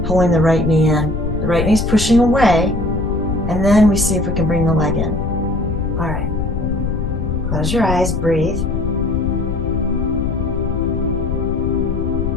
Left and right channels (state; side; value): noise; left; rumble, 2 dB below the sound